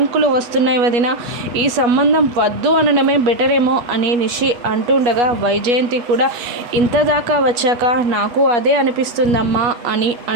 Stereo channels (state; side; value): late; left; 8.3 ms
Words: వస్తున్నాయి వదిన, ఈ సంబంధం వద్దు అనడమే బెటరేమో అని నిషి అంటుండగా, వైజయంతి కూడా ఇంత దాకా వచ్చాక నాకు అదే అనిపిస్తుందమ్మా అని